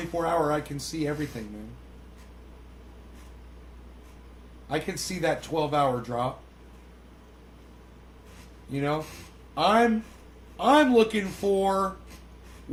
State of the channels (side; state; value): both; identical; correlation 1.00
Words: I can see everything, man. I can see that 12-hour drop. You know? I'm looking for